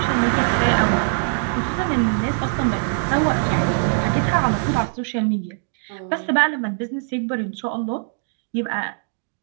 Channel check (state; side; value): silent; left; digital silence